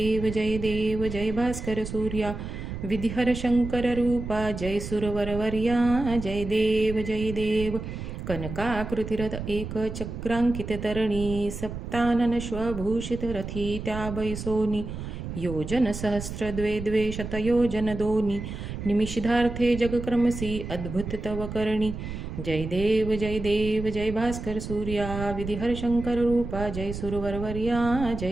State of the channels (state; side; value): noise; right; rumble, 7 dB below the sound